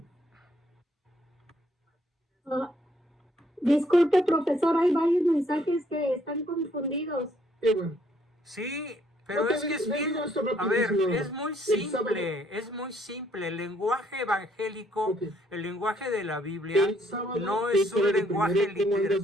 Disculpe, profesor, hay varios mensajes que están confundidos. Qué bueno. Sí, pero Ok, es que es le bien, digo esto a ver, rapidísimo. es muy El sábado- simple, es muy simple. El lenguaje evangélico, Ok. el lenguaje de la Biblia, El sábado, no ¿qué es un horario lenguaje primero? ¿Cómo literal. andas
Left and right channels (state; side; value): normal; both; correlation 0.67